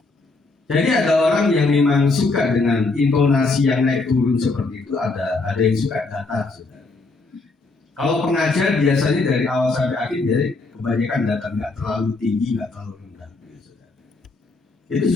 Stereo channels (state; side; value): quieter; right; 3.6 dB